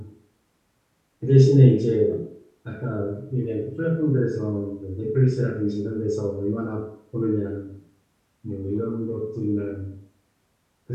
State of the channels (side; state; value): both; identical; correlation 1.00